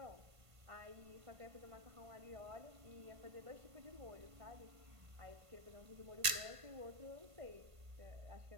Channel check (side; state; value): left; late; 1.5 ms